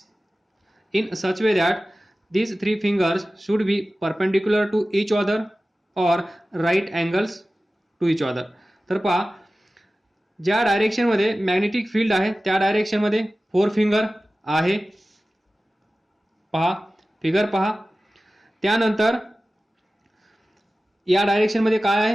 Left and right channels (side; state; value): both; normal; correlation 0.96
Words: in such way that these three fingers should be perpendicular to each other or right angles to each other. तर पहा ज्या डायरेक्शनमध्ये magnetic field आहे त्या डायरेक्शनमध्ये four finger आहे, पहा figure पहा. त्यानंतर या डायरेक्शनमध्ये काय